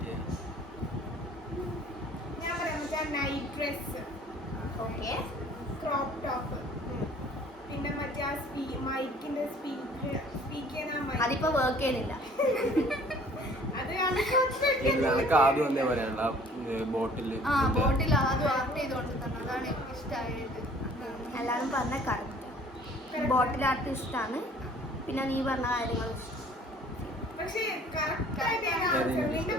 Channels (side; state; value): both; normal; correlation 0.53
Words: ഞാൻ പറയാം മറ്റേ night dress, okay. Crop top, പിന്നെ മറ്റേ ആ മൈക്കിന്റെ സ്പീക്ക് ചെയ്യുന്ന mic. അതിപ്പോ വർക്ക് ചെയ്യുന്നില്ല. അത് എനിക്ക് ആദ്യം വന്നേ പറയാനുള്ള ബോട്ടില് ആ ബോട്ടിൽ ആദ്യം ആർട്ട് ചെയ്തോണ്ട് തന്നെ അതാണ് ഇഷ്ടമായത്. എല്ലാവരും പറഞ്ഞ കറക്റ്റ് ബോട്ടിൽ ആർട്ട് ഇഷ്ടമാണ്. പിന്നെ നീ പറഞ്ഞ കാര്യങ്ങൾ പക്ഷേ correct ആയിട്ട് ഞാൻ answer നിന്റെ